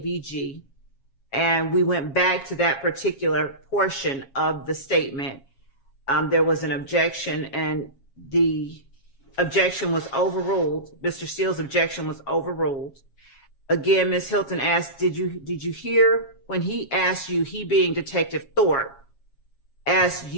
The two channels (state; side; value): late; right; 7.3 ms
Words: And we went back to that particular portion of the statement. There was an objection, and the objection was overruled. Mr. Steele's objection was overruled. Again, Ms. Hilton asked, did you hear when he asked you, he being Detective Thorpe, asked